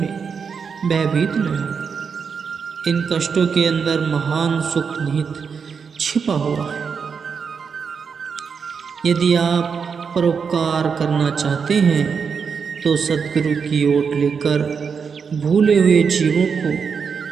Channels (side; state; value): left; quieter; 6.0 dB